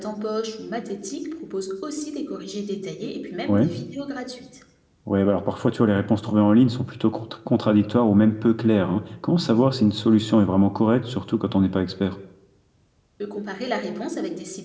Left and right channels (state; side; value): identical; both; correlation 1.00